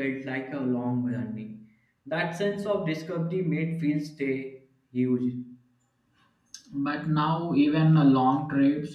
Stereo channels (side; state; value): both; identical; correlation 1.00